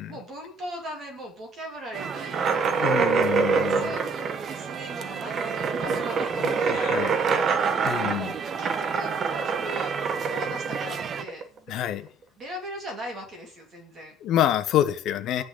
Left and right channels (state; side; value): normal; both; correlation 0.59